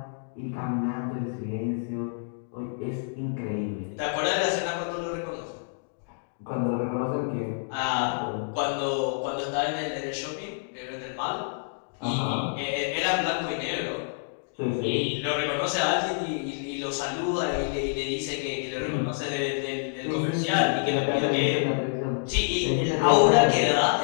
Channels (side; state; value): right; silent; digital silence